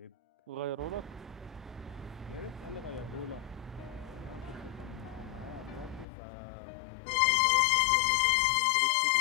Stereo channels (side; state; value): right; drops out; at 6.1 s